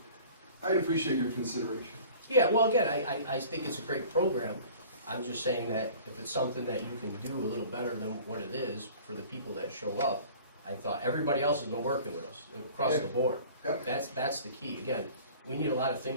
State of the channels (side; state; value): both; inverted; correlation -0.46